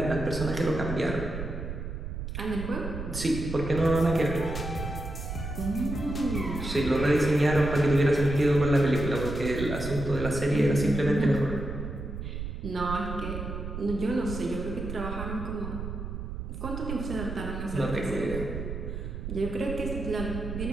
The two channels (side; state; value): right; noise; rumble, 6 dB below the sound